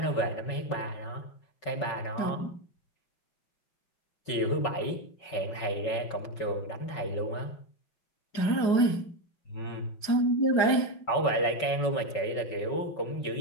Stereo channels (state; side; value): late; right; 5.3 ms